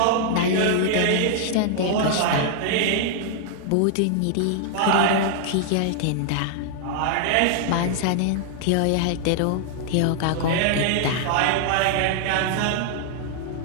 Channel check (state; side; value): different; both; correlation 0.00